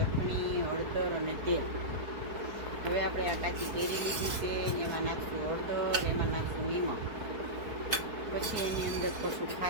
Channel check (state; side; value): late; left; 4.4 ms